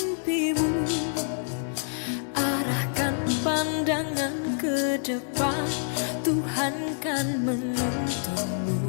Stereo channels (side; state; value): right; silent; 60 dB below the other